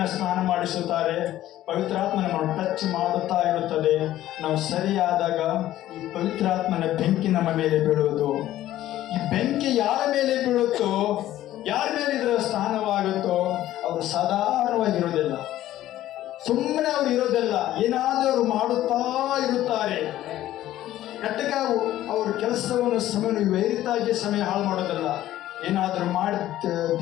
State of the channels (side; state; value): right; quieter; 13.8 dB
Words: ಸ್ನಾನ ಮಾಡಿಸುತ್ತಾರೆ. ಪವಿತ್ರಾತ್ಮ ನಮ್ಮನ್ನು ಟಚ್ ಮಾಡುತ್ತಾ ಇರುತ್ತದೆ. ನಾವು ಸರಿಯಾದಾಗ ಈ ಪವಿತ್ರಾತ್ಮನ ಬೆಂಕಿ ನಮ್ಮ ಮೇಲೆ ಬೀಳುವುದು. ಈ ಬೆಂಕಿ ಯಾರ ಮೇಲೆ ಬೀಳುತ್ತೋ, ಯಾರ ಮೇಲೆ ಇದರ ಸ್ನಾನವಾಗುತ್ತೋ ಅವರು ಸಾಧಾರಣವಾಗಿರುವುದಿಲ್ಲ, ಸುಮ್ಮನೆ ಅವರು ಇರೋದಿಲ್ಲ, ಏನಾದರೂ ಅವರು ಮಾಡುತ್ತಾ ಇರುತ್ತಾರೆ. ಕಟ್ಟಕ ಅವ್ರ ಕೆಲಸವನ್ನು ಸಮಯ ವೈರಿತಾಗಿ ಸಮಯ ಹಾಳು ಮಾಡೋದಿಲ್ಲ. ಏನಾದರೂ ಮಾಡಿ